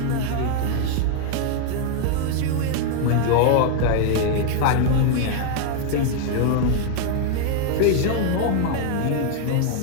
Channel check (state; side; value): different; both; correlation 0.00